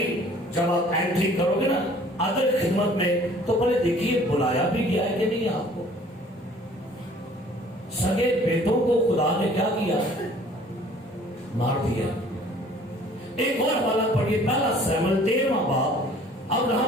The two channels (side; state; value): both; normal; correlation 0.53